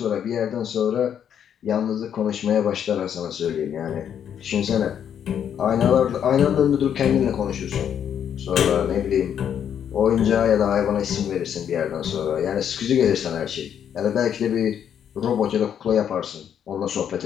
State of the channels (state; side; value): quieter; right; 8.9 dB